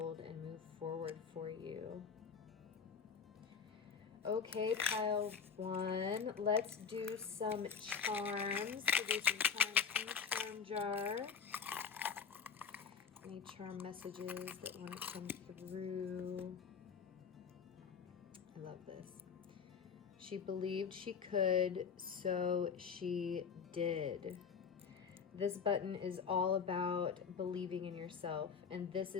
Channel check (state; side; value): quieter; right; 6.4 dB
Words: and move forward for you. Okay, pile one, let's do some charms. So do some charms from the charm jar. Any charm messages that want to come through? I love this. She believed she could, so she did. This button is all about believing in yourself, and this